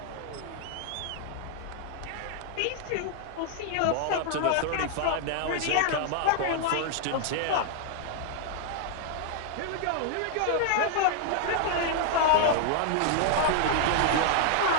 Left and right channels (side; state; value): both; different; correlation 0.00